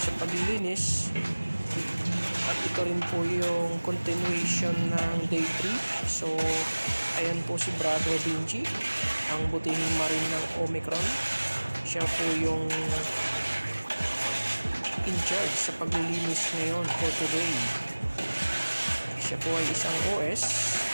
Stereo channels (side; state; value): both; inverted; correlation -1.00